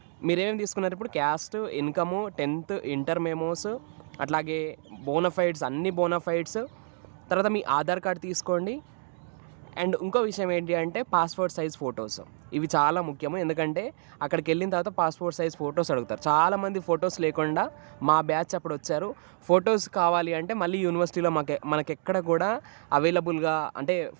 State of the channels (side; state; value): left; silent; 59 dB below the other